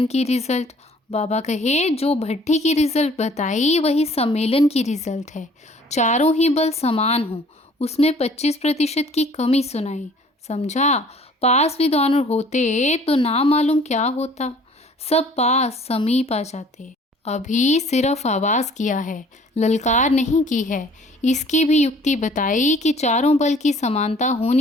की रिजल्ट, बाबा कहे जो भट्टी की रिजल्ट बताई वही सम्मेलन की रिजल्ट है। चारों ही बल समान हो, उसमें 25% की कमी सुनाई। समझा? पास विद ऑनर होते तो ना मालूम क्या होता, सब पास समीप आ जाते। अभी सिर्फ आवाज़ किया है, ललकार नहीं की है। इसकी भी युक्ति बताई कि चारों बल की समानता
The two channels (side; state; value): both; normal; correlation 0.54